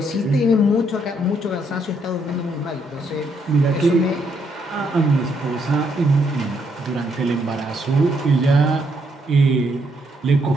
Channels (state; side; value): normal; both; correlation 0.74